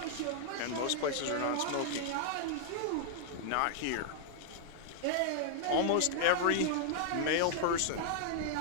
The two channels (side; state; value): both; different; correlation -0.01